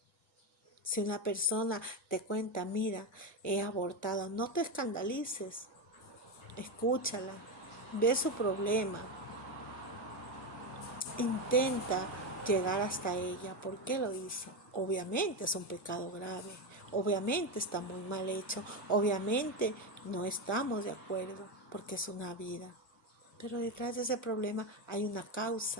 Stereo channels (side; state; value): both; normal; correlation 0.12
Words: Si una persona te cuenta, mira, he abortado, no te escandalices. Escúchala, ve su problema. Intenta llegar hasta ella. ¿Por qué lo hizo? Obviamente es un pecado grave. Obviamente está muy mal hecho. Obviamente no estamos de acuerdo porque es una vida. Pero detrás de ese problema hay una